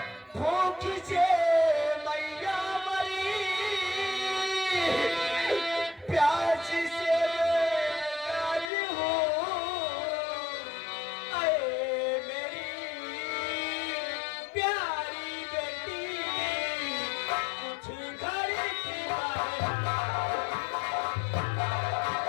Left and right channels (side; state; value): right; drops out; at 8.7 s